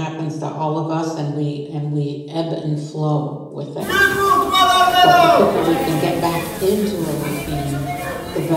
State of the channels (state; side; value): identical; both; correlation 1.00